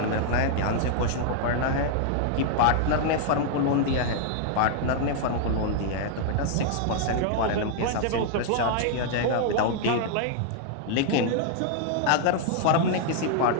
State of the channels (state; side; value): different; both; correlation -0.01